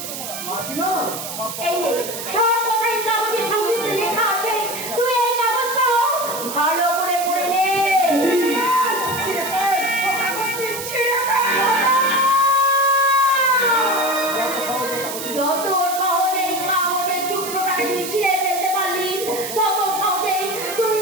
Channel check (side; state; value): right; noise; hiss, 7 dB below the sound